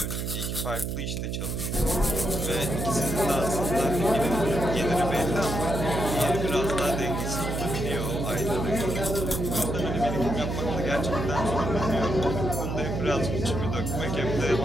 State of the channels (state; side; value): noise; right; hum, 3 dB below the sound